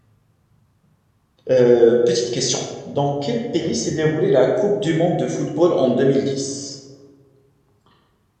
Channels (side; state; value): both; identical; correlation 1.00